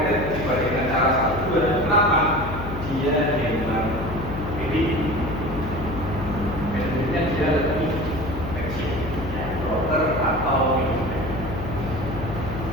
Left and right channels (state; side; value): noise; left; hum, 7 dB below the sound